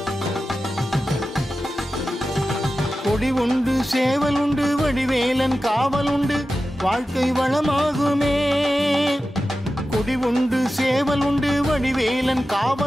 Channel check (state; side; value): normal; both; correlation 0.93